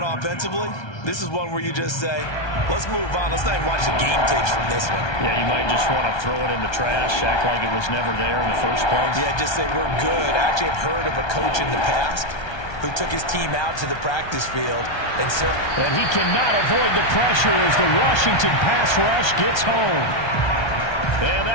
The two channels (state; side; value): late; right; 1.3 ms